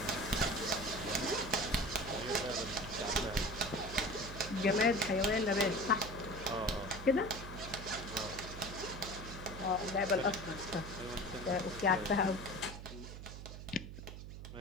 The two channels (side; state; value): right; noise; hum, 10 dB below the sound